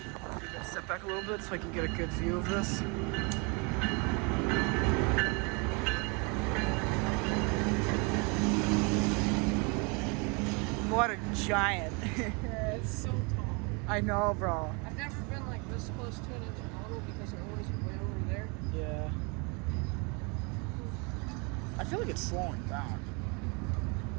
Step back a little bit so I can get a good view of this. What a giant. It's so tall. I know, bro. I've never been like this close to an intermodal because they're always way over there. Yeah. I feel like it's slowing down.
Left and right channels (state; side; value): quieter; left; 31.6 dB